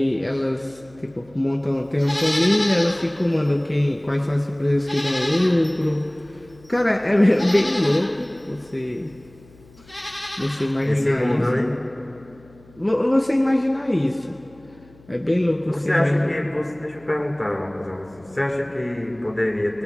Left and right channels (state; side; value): noise; left; hum, 26 dB below the sound